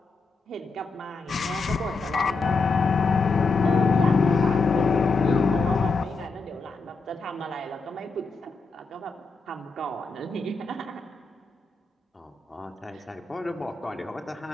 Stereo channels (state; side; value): quieter; right; 4.1 dB